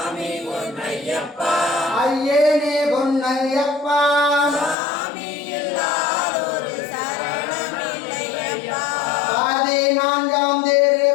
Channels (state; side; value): drops out; right; at 4.8 s